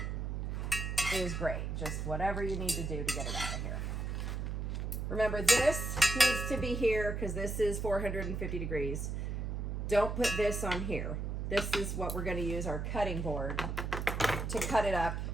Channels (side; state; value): right; noise; hum, 3 dB below the sound